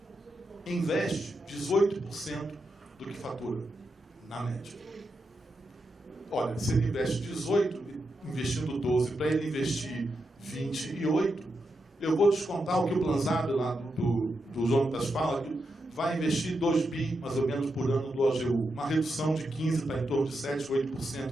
Investe 18% do que fatura, na média. Olha, se ele investe 18, investindo 12, para ele investir 28, eu vou descontar o que o Plan Zaber lá do Jonatas fala, que vai investir 2 bi, mais ou menos, por ano do OGU. Uma redução de 15% para em torno de 7%,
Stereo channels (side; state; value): both; normal; correlation 0.86